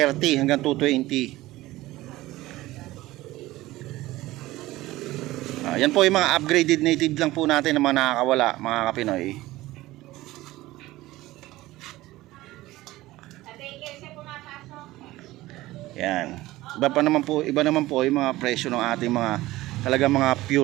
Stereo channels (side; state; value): left; quieter; 17.6 dB